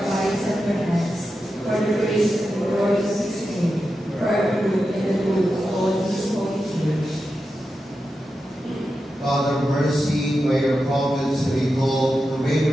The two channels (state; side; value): normal; both; correlation 0.90